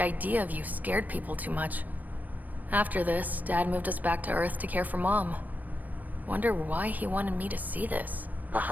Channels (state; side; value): late; left; 0.082 ms